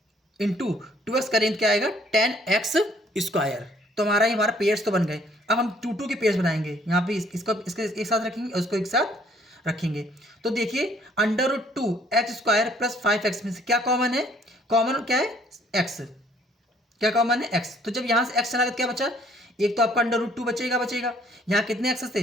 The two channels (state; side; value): normal; both; correlation 0.62